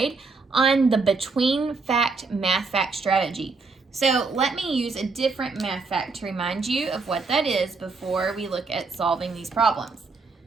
on the between fact math fact strategy. So let me use a different math fact to remind you of what that is before we look at solving these problems.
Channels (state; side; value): quieter; left; 4.2 dB